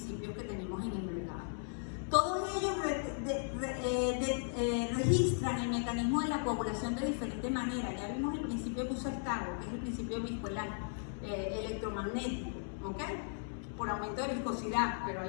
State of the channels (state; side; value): silent; right; digital silence